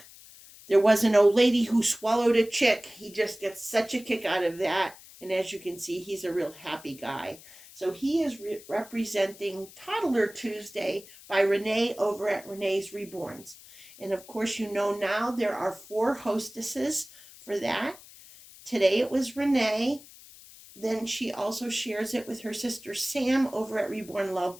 There was an old lady who swallowed a chick. He just gets such a kick out of that, and as you can see, he's a real happy guy. So he is representing Toddler Tuesday by Renee over at Renee's Reborns. And of course, you know now there are 4 hostesses for that. Today it was Renee. Then she also shares it with her sister Sam over at Reborn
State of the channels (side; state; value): left; noise; hiss, 20 dB below the sound